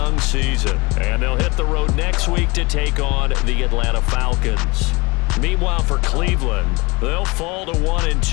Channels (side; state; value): right; quieter; 25.5 dB